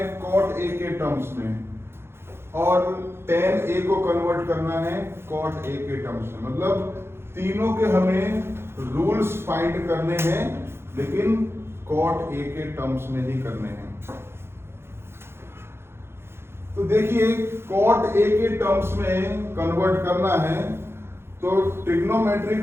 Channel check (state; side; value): late; left; 0.12 ms